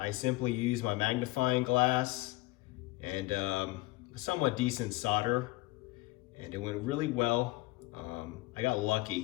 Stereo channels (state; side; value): quieter; right; 20.5 dB